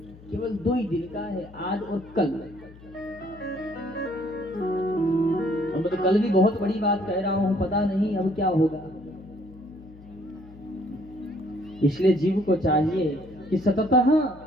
केवल 2 ही दिन का है, आज और कल। अब तो कल भी बहुत बड़ी बात कह रहा हूं, पता नहीं अब क्या होगा। इसलिए जीव को चाहिए कि सततः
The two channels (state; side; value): noise; left; hum, 21 dB below the sound